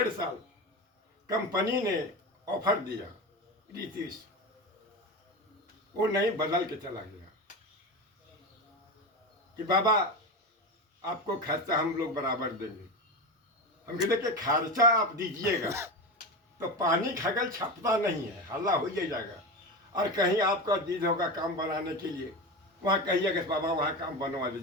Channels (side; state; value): both; normal; correlation 0.22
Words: साल कंपनी ने ऑफर दिया, रीतिश वो नहीं, बदल के चला गया कि बाबा आपको खर्चा हम लोग बराबर देंगे। हम कहते कि खर्चा आप दीजिएगा तो पानी खगल छपता नहीं है, हल्ला हो जाएगा। और कहीं आपका जिद होगा काम बनाने के लिए, वहाँ कहिएगा बाबा वहाँ काम बनवा